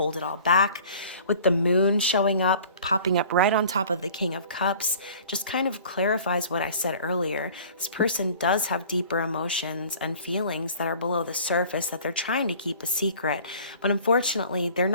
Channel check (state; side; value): inverted; both; correlation -0.47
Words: it all back. With the moon showing up, popping up right on top of the King of Cups, just kind of clarifies what I said earlier. This person does have deeper emotions and feelings that are below the surface that they're trying to keep a secret. But unfortunately, they're